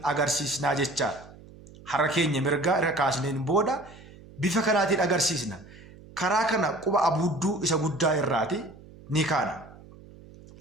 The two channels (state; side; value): noise; right; hum, 20 dB below the sound